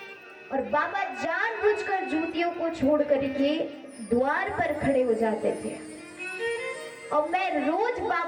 और बाबा जानबूझकर जूतियों को छोड़ करके द्वार पर खड़े हो जाते थे। और मैं रोज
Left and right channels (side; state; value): both; identical; correlation 1.00